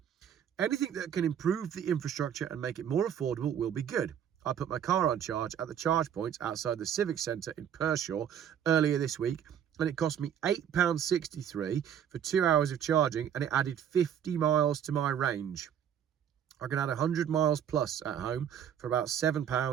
anything that can improve the infrastructure and make it more affordable will be good. I put my car on charge at the charge points outside the Civic Centre in Pershore earlier this week, and it cost me £8.63 for 2 hours of charging, and it added 50 miles to my range. I can add 100 miles plus at home for about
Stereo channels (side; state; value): left; quieter; 9.1 dB